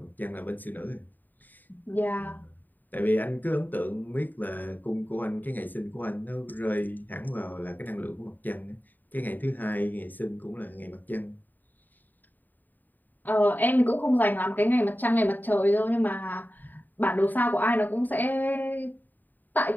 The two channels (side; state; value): right; late; 0.088 ms